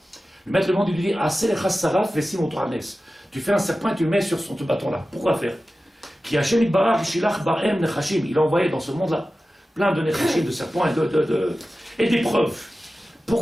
Le maître du monde, il lui dit, tu fais un serpent et tu le mets sur ce bâton-là. Pourquoi faire? Il a envoyé dans ce monde-là plein de nechashim, de serpents et d'épreuves.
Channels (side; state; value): both; normal; correlation 0.95